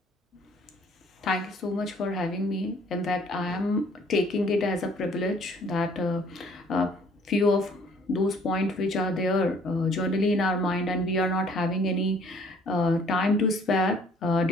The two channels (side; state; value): both; normal; correlation 0.58